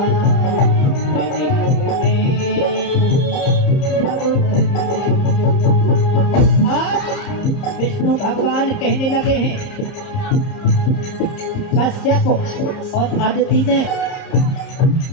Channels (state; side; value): late; right; 30 ms